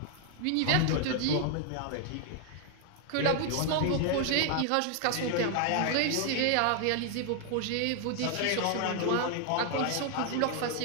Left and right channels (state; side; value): different; both; correlation 0.00